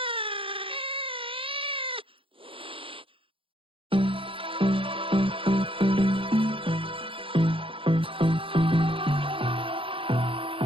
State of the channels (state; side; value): late; left; 0.26 ms